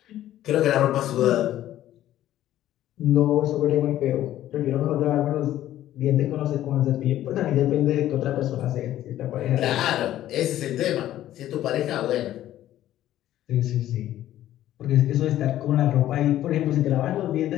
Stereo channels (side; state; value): right; quieter; 13.1 dB